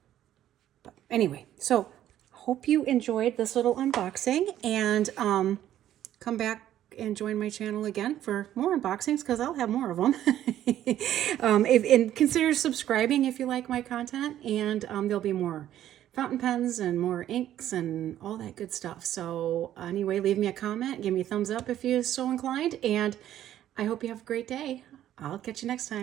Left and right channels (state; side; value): quieter; left; 12.0 dB